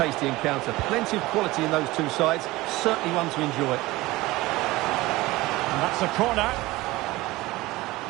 encounter. Plenty of quality in those two sides. Certainly one to enjoy. And that's a corner.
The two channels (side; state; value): left; quieter; 19.5 dB